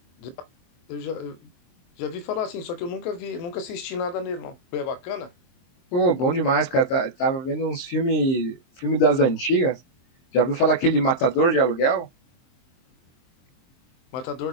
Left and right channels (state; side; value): late; right; 23 ms